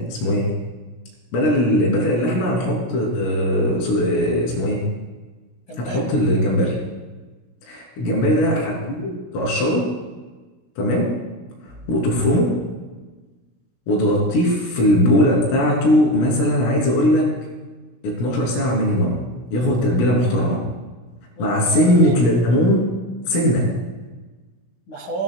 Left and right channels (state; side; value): late; right; 17 ms